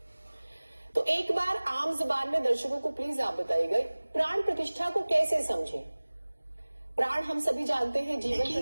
तो एक बार आम जुबान में दर्शकों को प्लीज आप बताइएगा, प्राण प्रतिष्ठा को कैसे समझें? प्राण हम सभी जानते हैं, जीवन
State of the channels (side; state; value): both; inverted; correlation -1.00